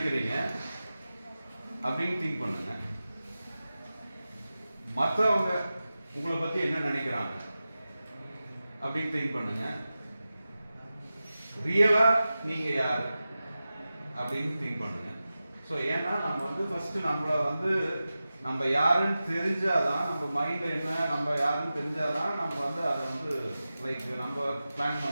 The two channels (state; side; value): inverted; both; correlation -0.94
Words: அப்படின்னு திங்க் பண்ணுங்க. மற்றவங்க உங்களை பற்றி என்ன நினைக்கிறாங்க அப்படின்னு திங்க் பண்ணுங்க. ரியலாக நீங்கள் யார் அப்படின்னு திங்க் பண்ணுங்க. ஸோ ஏன்னா நம்ம வந்து ஃபர்ஸ்ட் நம்மளை வந்து நம்ம யாருன்னு தெரிஞ்சாதான், நம்ம மைண்ட் என்ன நம்ம யாருன்னு தெரிஞ்சாதான் நம்ம வந்து அதை வந்து லைக் நம்ம பிளான்